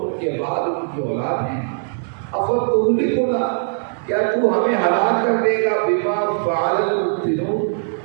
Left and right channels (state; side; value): silent; left; digital silence